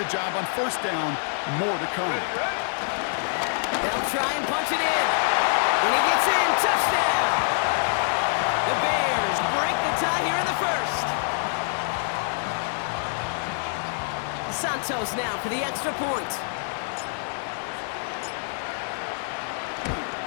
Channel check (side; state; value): right; silent; digital silence